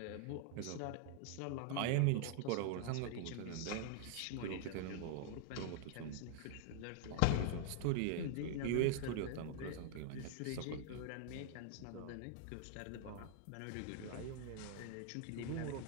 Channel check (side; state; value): both; different; correlation -0.01